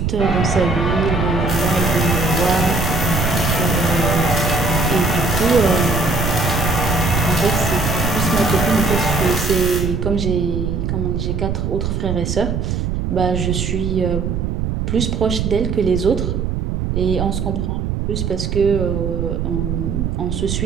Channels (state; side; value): noise; right; rumble, 1 dB below the sound